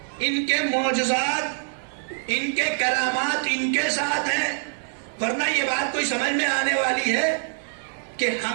ان کے معجزات، ان کے کرامات ان کے ساتھ ہیں، ورنہ یہ بات کوئی سمجھ میں آنے والی ہے کہ ہم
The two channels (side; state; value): left; silent; 56 dB below the other